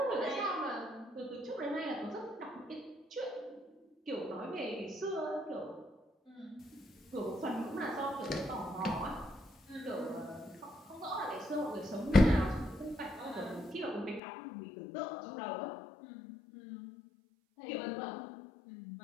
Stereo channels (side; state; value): right; drops out; at 14.2 s